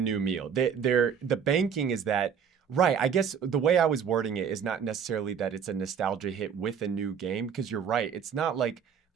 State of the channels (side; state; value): left; quieter; 7.3 dB